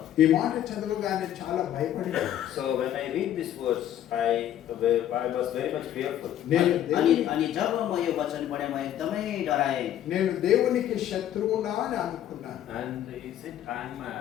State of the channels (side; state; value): right; quieter; 11.4 dB